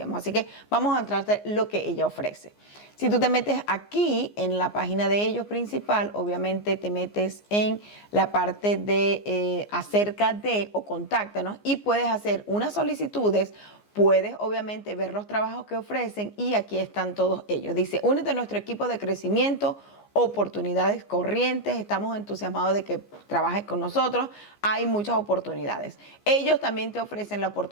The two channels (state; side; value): late; right; 14 ms